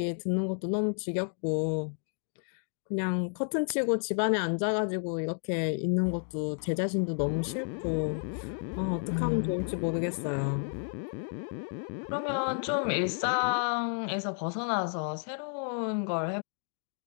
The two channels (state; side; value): silent; right; 55 dB below the other